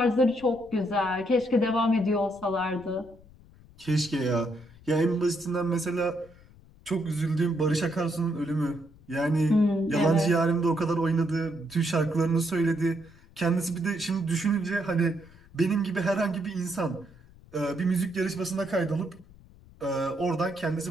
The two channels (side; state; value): left; noise; rumble, 24 dB below the sound